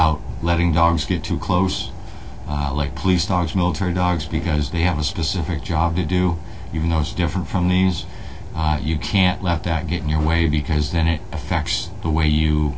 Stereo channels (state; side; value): identical; both; correlation 1.00